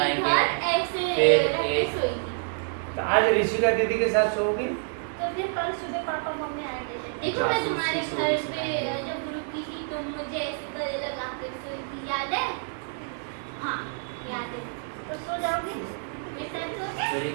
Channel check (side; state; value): left; silent; digital silence